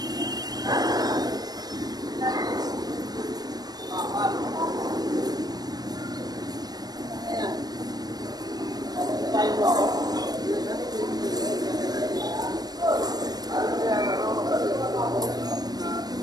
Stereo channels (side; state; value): left; late; 0.19 ms